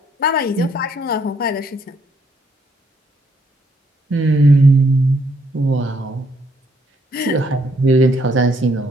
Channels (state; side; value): normal; both; correlation 0.70